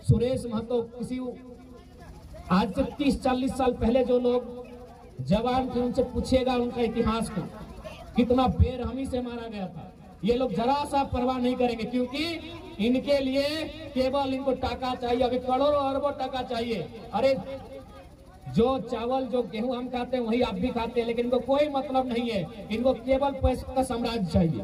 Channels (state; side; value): identical; both; correlation 1.00